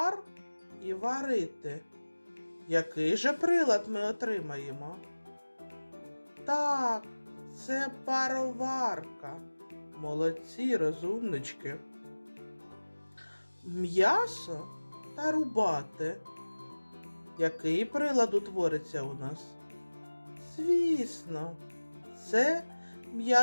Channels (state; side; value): inverted; both; correlation -1.00